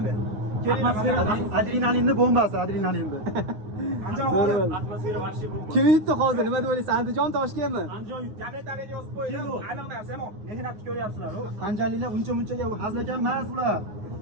men. Kelinglar. Adrenalinni bombasi, adrenalinni. Andijon atmosfera vahshiy bomba. Kim yutdi hozir? Nima deb o'ylaysiz? Andijon Toshkentmi? Andijon yutdi. Gazetlarga yozib qo'ydim. Aniq narsa, mehnatni ko'ryapsizlar. Qanjalilar uncha-munchaga hazlagan emas bular.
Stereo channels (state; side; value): late; left; 9.5 ms